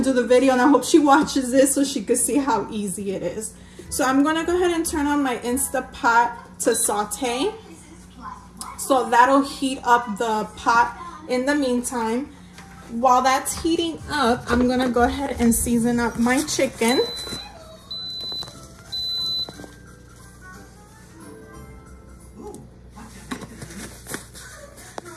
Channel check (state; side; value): identical; both; correlation 1.00